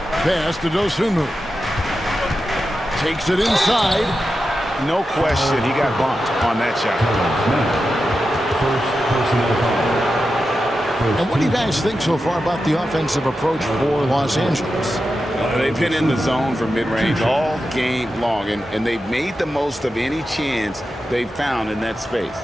Pass to Dosunmu. Takes it inside. No question, he got bumped on that shot. And what do you guys think so far about the offensive approach for Los Angeles? They've been in the zone from mid-range all game long, and they've made the most of any chance they've found in that space.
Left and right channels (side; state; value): both; normal; correlation 0.90